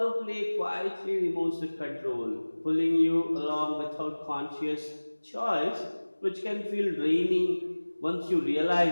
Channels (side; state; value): both; inverted; correlation -1.00